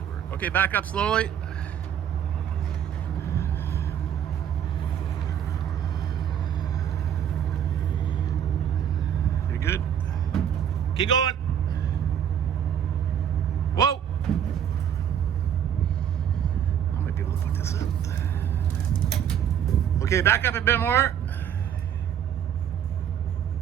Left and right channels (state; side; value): quieter; left; 9.1 dB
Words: work. Okay, back up slowly. You're good. Keep going. Whoa! I might be able to put this up. Okay, back up a bit more.